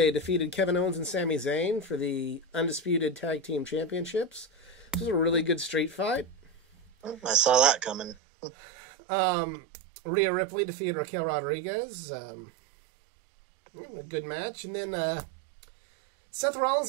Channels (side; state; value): left; drops out; at 8.2 s